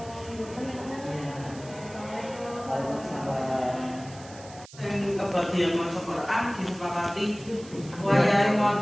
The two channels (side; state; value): right; noise; hiss, 19 dB below the sound